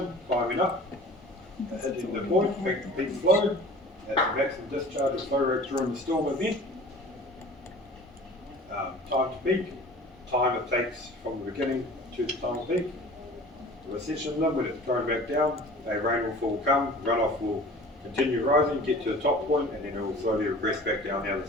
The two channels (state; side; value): normal; both; correlation 0.44